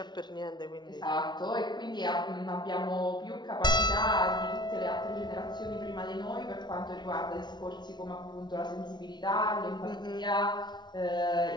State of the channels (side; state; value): right; late; 0.21 ms